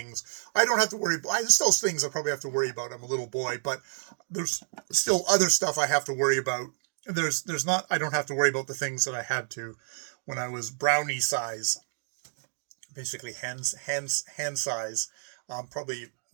I don't have to worry. There's still things I probably have to worry about. I'm a little boy, but there's still other stuff I have to worry about. There's not, I don't have to worry about the things that I had to when I was brownie size, basically hand size. Probably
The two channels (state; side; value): silent; left; digital silence